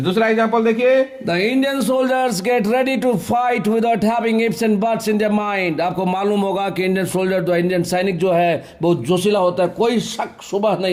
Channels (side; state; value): both; identical; correlation 1.00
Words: दूसरा एग्जांपल देखिए, the Indian soldiers get ready to fight without having ifs and buts in their mind. आपको मालूम होगा कि इंडियन सोल्जर, जो इंडियन सैनिक जो है, बहुत जोशीला होता है, कोई शक शुबह